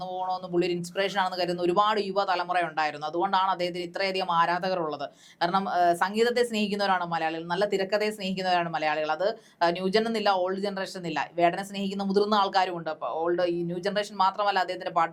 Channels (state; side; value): identical; both; correlation 1.00